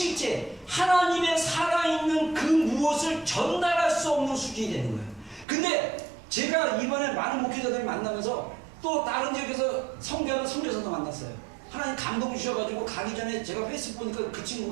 하나님의 살아있는 그 무엇을 전달할 수 없는 수준이 되는 거예요. 근데 제가 이번에 많은 목회자들을 만나면서 또 다른 지역에서 성교하는 선교사도 만났어요. 하나님 감동 주셔가지고 가기 전에 제가 페이스북 보니까 그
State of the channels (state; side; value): drops out; left; at 5.5 s